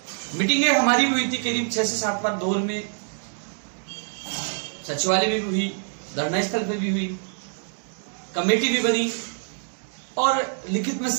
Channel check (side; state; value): left; silent; digital silence